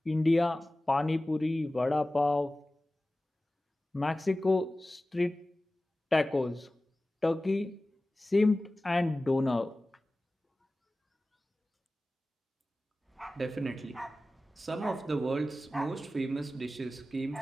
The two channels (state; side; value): normal; both; correlation 0.96